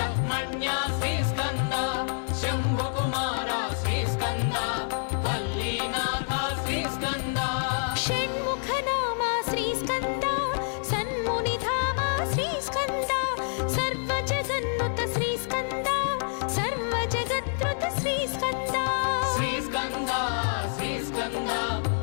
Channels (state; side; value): silent; right; 60 dB below the other